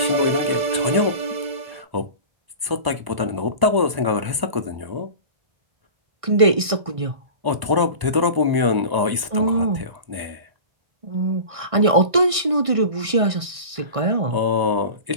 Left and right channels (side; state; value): left; late; 1.0 ms